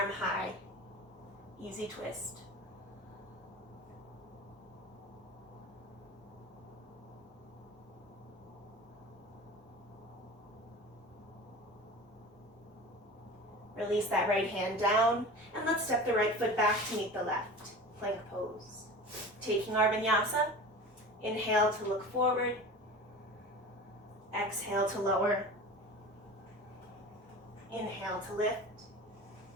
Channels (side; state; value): both; normal; correlation 0.35